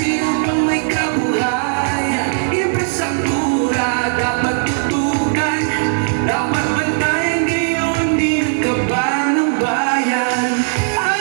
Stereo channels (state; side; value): silent; left; digital silence